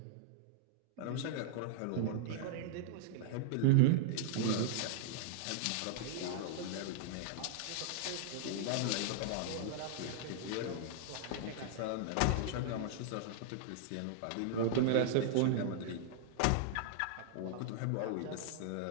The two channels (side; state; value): both; different; correlation -0.01